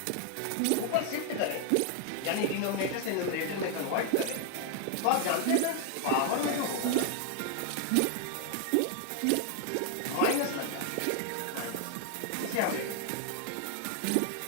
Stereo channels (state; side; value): different; both; correlation 0.00